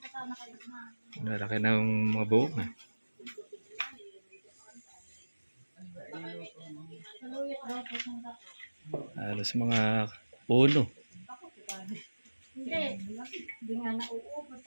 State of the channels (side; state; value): both; inverted; correlation -1.00